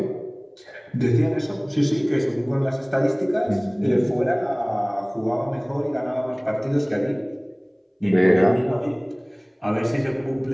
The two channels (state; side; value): identical; both; correlation 1.00